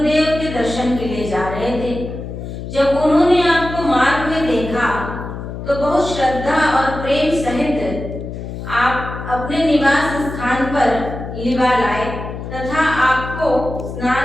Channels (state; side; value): noise; left; hum, 8 dB below the sound